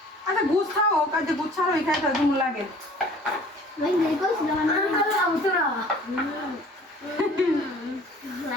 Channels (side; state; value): both; normal; correlation 0.50